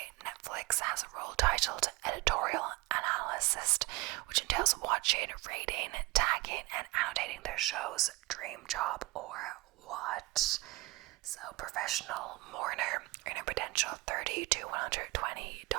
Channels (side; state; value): left; quieter; 22.5 dB